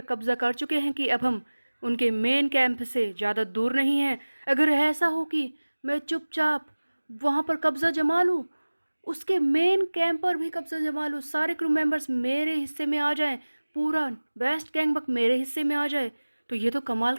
कब्जा कर चुके हैं कि अब हम उनके मेन कैंप से ज़्यादा दूर नहीं हैं। अगर ऐसा हो कि मैं चुपचाप वहाँ पर कब्जा जमा लूँ, उसके मेन कैंप पर भी कब्जा जमा लूँ, सारे क्रू मेंबर्स मेरे हिस्से में आ जाएं, पूरा वेस्ट गैंगबक मेरे हिस्से में आ जाए, तो ये तो कमाल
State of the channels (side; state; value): both; inverted; correlation -1.00